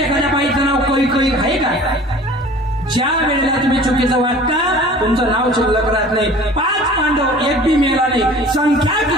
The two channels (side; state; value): both; normal; correlation 0.45